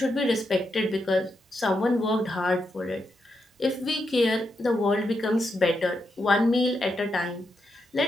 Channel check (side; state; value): both; normal; correlation 0.84